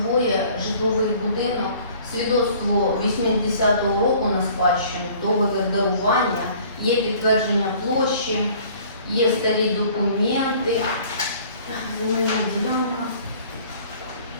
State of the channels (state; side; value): inverted; both; correlation -0.52